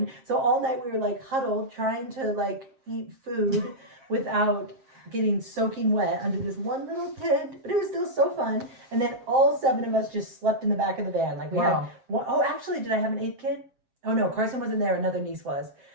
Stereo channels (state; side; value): late; left; 7.5 ms